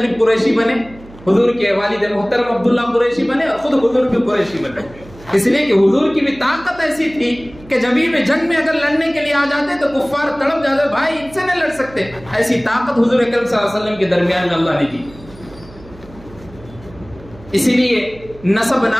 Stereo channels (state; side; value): noise; right; hum, 21 dB below the sound